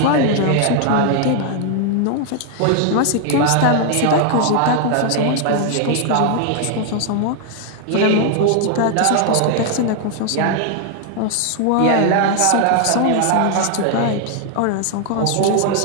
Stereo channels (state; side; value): different; both; correlation 0.00